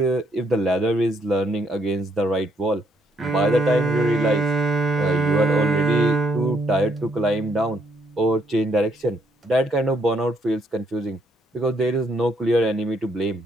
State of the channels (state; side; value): normal; both; correlation 0.71